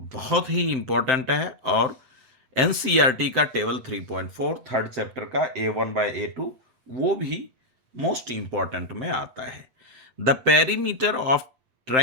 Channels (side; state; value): left; late; 7.7 ms